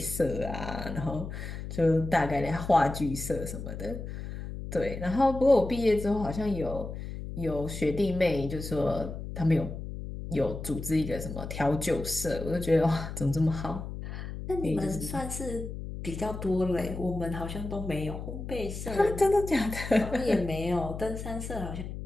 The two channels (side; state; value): left; noise; hum, 8 dB below the sound